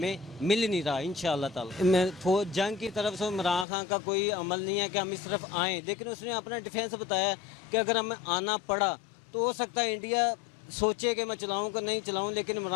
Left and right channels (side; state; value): right; drops out; at 3.7 s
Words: مل نہیں رہا انشاءاللہ تعالی. میں جنگ کی طرف سے عمران خان کا کوئی عمل نہیں ہے کہ ہم اس طرف آئیں, لیکن اس نے اپنا ڈیفینس بتایا کہ اگر ہمیں آنا پڑا تو ہو سکتا ہے انڈیا سوچے کہ میں چلاؤں کہ نہیں چلاؤں, لیکن